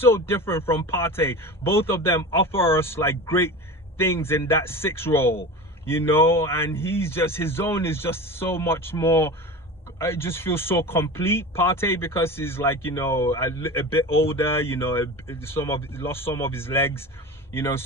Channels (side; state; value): both; normal; correlation 0.31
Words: different from Partey. Both of them offer us like great things in that 6 role, you know. And he's just, his zone is just so much more, I just feel so complete. Partey, because he's like, you know, a bit older, you know, lost some of his legs, you know.